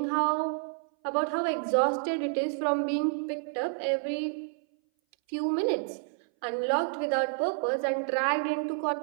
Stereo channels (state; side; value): silent; left; 58 dB below the other